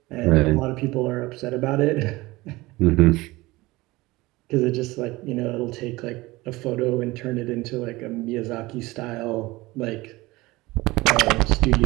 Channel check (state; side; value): quieter; left; 20.5 dB